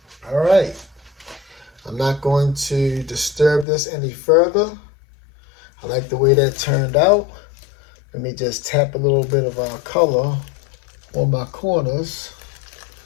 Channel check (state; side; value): drops out; right; at 3.7 s